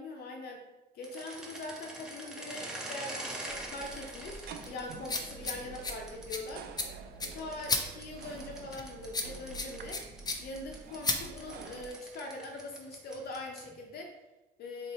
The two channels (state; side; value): normal; both; correlation 0.19